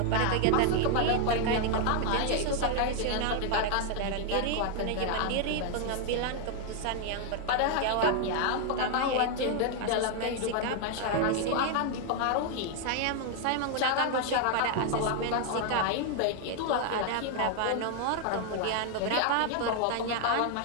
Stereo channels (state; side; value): different; both; correlation 0.00